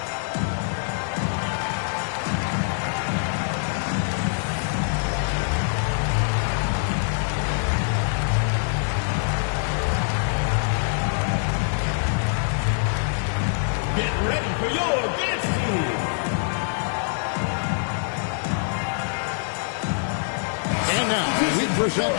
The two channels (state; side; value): silent; right; 62 dB below the other